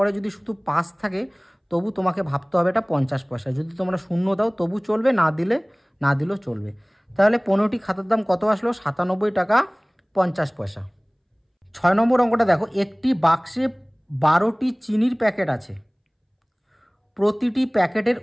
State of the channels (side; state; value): both; identical; correlation 1.00